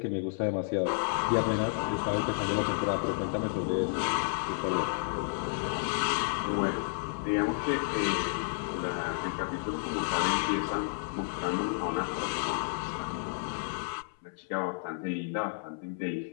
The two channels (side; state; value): right; silent; 57 dB below the other